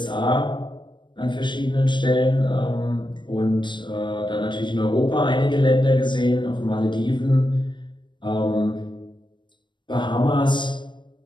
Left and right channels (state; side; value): late; right; 0.22 ms